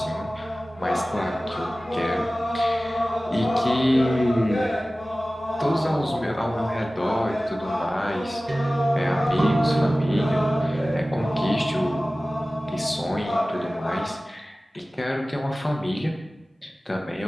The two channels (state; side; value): normal; both; correlation 0.97